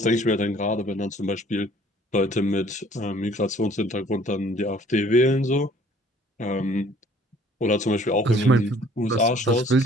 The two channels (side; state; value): both; normal; correlation 0.56